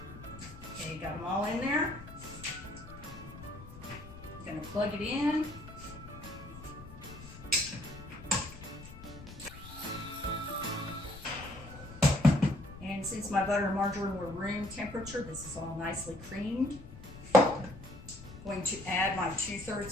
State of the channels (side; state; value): left; noise; rumble, 15 dB below the sound